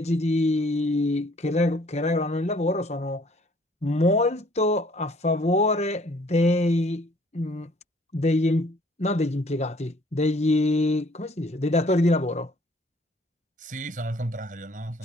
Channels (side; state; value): both; normal; correlation 0.59